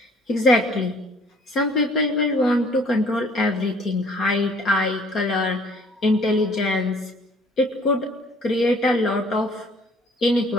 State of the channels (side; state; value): both; normal; correlation 0.56